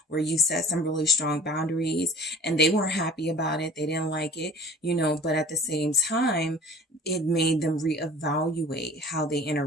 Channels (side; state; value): both; normal; correlation 0.45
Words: where you set some really strong boundaries and they weren't happy about it. They didn't like it, you know, but at the same time, it made them reevaluate how they